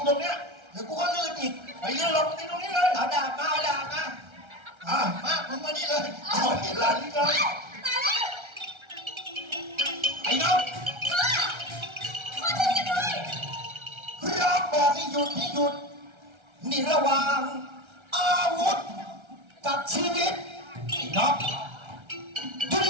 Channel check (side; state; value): left; late; 1.3 ms